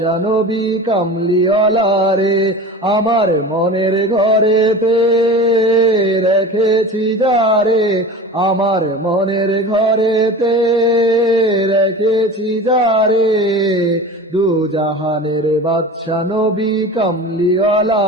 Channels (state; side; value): normal; both; correlation 0.34